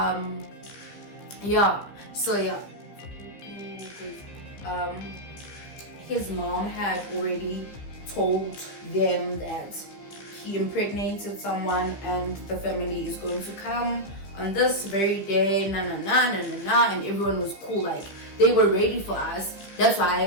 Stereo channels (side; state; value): right; late; 15 ms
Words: His mom had already told them that he impregnated someone and the family is going to come on this very day, and everyone was cool, like they were ready for us. That's